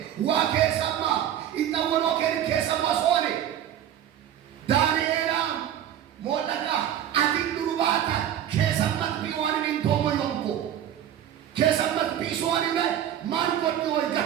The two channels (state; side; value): quieter; left; 10.6 dB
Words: ዋ ከሰማ ይጣወሎ ከሰማ ሶኔ ዳንኤላ ሞለካ አቲንዱባታ ከሰማት ቢዋን እንቶሞ ይንቆ ከሰማት ቢሶኒ ላይ ማን ወጥቶ